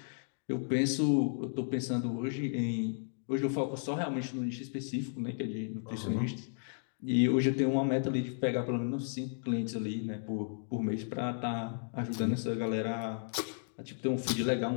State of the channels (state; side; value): silent; right; digital silence